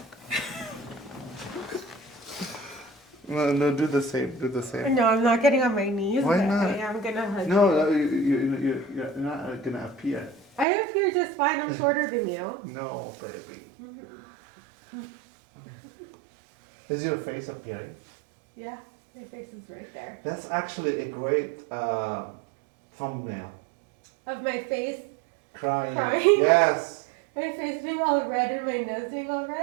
No, do the same. Do the same. No, I'm not getting on my knees. Why but not? I am gonna hug you. No, you're not gonna appear. I appear just fine. I'm shorter than you. No, baby. Is your face appearing? Yeah. My face is right there. That's actually a great thumbnail. Of my face. Crying. Crying? Yes. My face being all red and my nose being all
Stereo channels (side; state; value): left; drops out; at 10.7 s